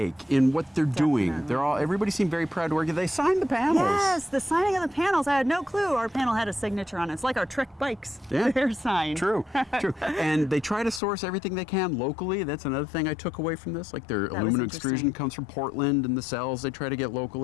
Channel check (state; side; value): drops out; right; at 11.0 s